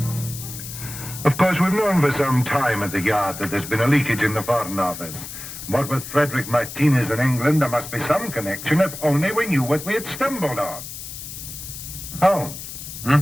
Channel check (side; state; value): left; noise; hiss, 10 dB below the sound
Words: Of course, we've known for some time at the Yard that there's been a leakage in the Foreign Office. What with Frederick Martinez in England, there must be some connection, if only we knew what we had stumbled on. Holmes.